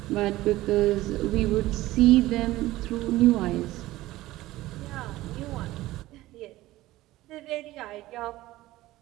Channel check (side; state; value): left; quieter; 17.0 dB